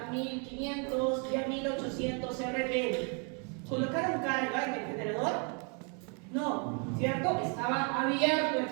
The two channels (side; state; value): left; quieter; 37.4 dB